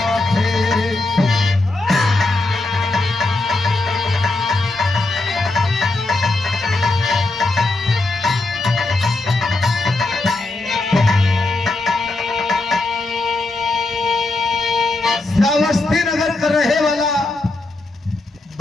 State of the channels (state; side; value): quieter; right; 3.0 dB